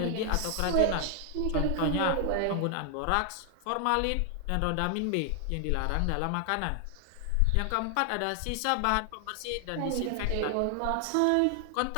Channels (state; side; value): different; both; correlation 0.00